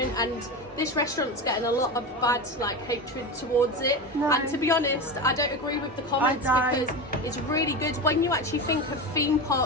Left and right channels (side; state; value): both; normal; correlation 0.22